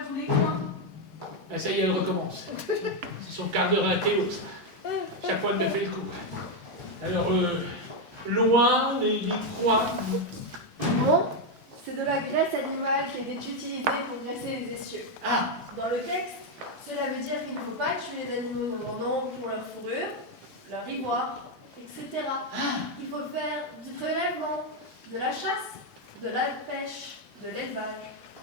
tous les coins. Ben ça y est, elle recommence. C'est son quart d'heure à Théo, ça. Chaque fois, elle me fait le coup. Alors, loin les coins. Bon, c'est de la graisse animale qui est utilisée pour graisser les essieux. Ah, Dans le texte, cela veut dire qu'il ne faut pas tuer les animaux en grand nombre pour leur fourrure, leur ivoire, etc. Il faut faire du prélèvement, de la chasse, de la pêche, de l'élevage,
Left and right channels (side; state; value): both; normal; correlation 0.04